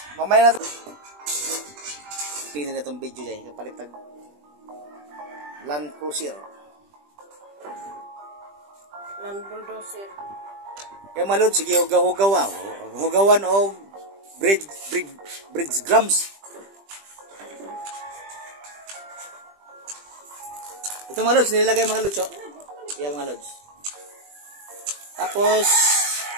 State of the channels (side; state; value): left; late; 20 ms